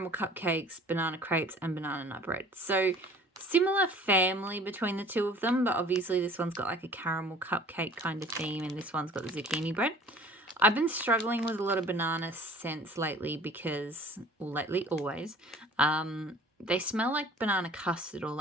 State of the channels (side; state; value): both; normal; correlation 0.49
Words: cupcakes, banana crepes, and banana nut bread. So similar family between the two of them, but obviously this one's got like a caramel cupcake kind of theme, and this one's got the zucchini bread. I've been struggling with a lot of banana scents lately because, well, lately, always, they smell like banana custard or